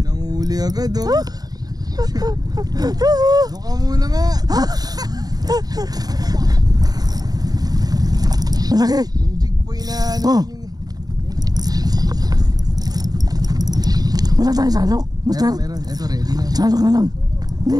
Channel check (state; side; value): late; left; 0.19 ms